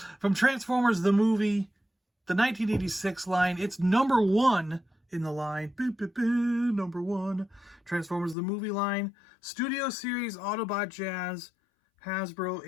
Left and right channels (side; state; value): right; drops out; at 8.3 s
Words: From Transformers the movie, the 1986 line. It's number one in the line. Number one. Transformers the movie line. Studio Series Autobot Jazz. Hasbro